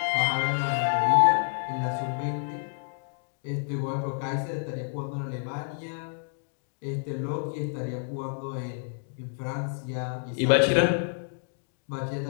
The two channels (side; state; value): right; silent; digital silence